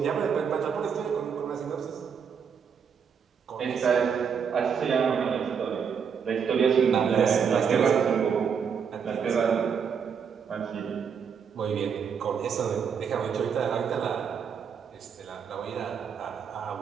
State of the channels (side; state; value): left; quieter; 6.9 dB